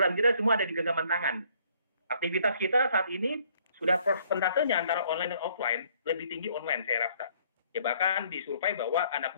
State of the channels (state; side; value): inverted; both; correlation -0.63